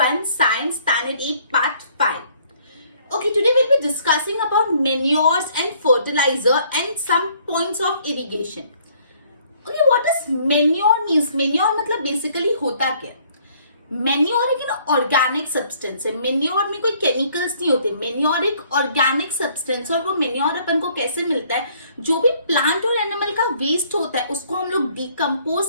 Science Standard 8, part 5. Okay, today we'll be discussing about manures and fertilizer and some points of irrigation. Okay, what does manure means? Manure मतलब basically होता क्या? Manure एक organic substance है. Manure में कोई chemicals नहीं होते. Manure एक ऑर्गेनिक सब्सटेंस. और वो मैन्योर अपन को कैसे मिलता है? जो भी प्लांट और एनिमल का वेस्ट होता है उसको हम लोग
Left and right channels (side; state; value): both; inverted; correlation -0.62